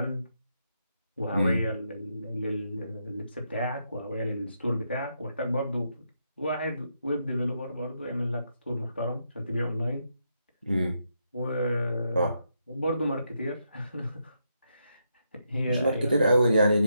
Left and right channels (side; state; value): both; inverted; correlation -0.80